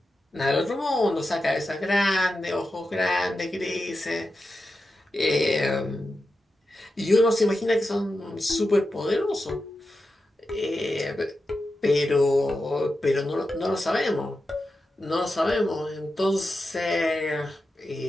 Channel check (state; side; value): normal; both; correlation 0.90